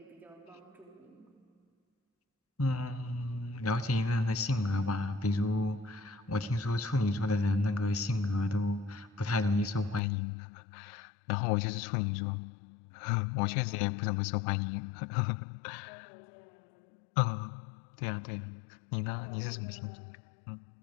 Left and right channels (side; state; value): right; drops out; at 10.0 s